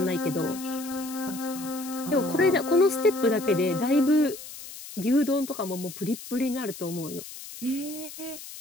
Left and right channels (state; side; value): noise; left; hiss, 13 dB below the sound